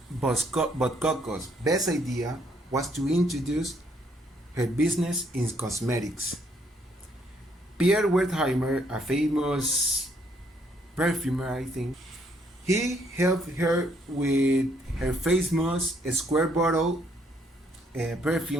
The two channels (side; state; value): both; normal; correlation 0.69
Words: But Coco's best idea was to introduce her business in cosmetics. Pierre Wertheimer, a famous perfumer, I think, he helped her with her famous square bottle